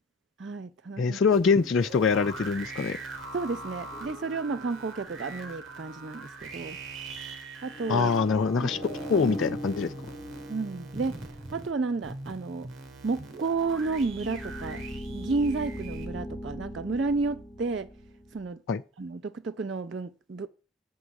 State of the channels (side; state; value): both; normal; correlation 0.34